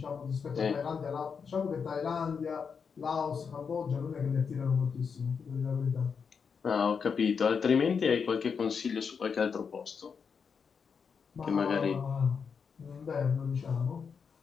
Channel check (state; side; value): quieter; right; 6.1 dB